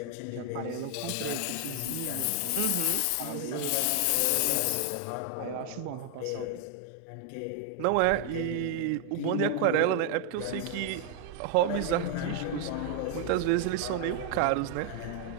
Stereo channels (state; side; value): different; both; correlation 0.00